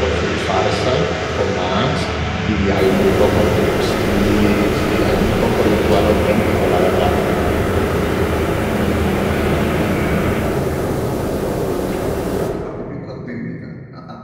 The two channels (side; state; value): both; identical; correlation 1.00